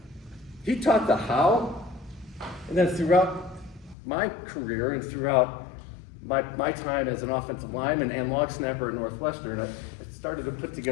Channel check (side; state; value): right; drops out; at 4.0 s